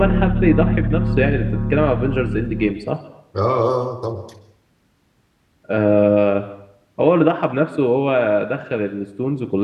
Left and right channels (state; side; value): identical; both; correlation 1.00